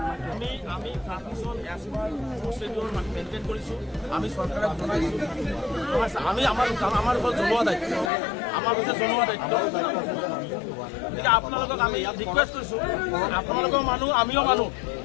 আমি মেইনটেইন কৰিছোঁ, আমি চৰকাৰক জনাইছোঁ, আমি আমাৰ ওপৰত জনোৱা দায়িত্ব, আমাৰ ওপৰত জনোৱা দায়িত্ব। গতিকে আপোনালোকক আমি ৰিকুৱেষ্ট কৰিছোঁ, আপোনালোকৰ মানুহ, আমিও মানুহ।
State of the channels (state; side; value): drops out; right; at 8.1 s